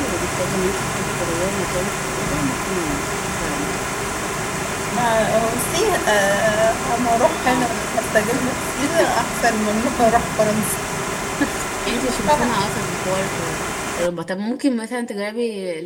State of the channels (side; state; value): both; identical; correlation 1.00